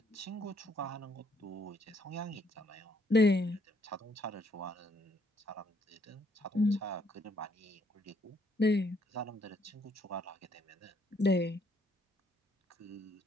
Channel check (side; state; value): both; normal; correlation 0.68